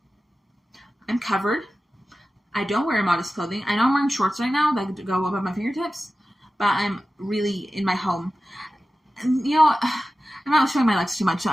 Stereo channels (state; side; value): normal; both; correlation 0.95